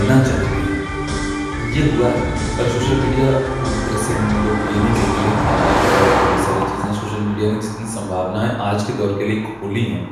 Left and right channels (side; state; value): both; identical; correlation 1.00